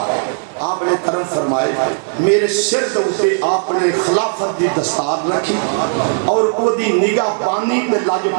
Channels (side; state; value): left; silent; digital silence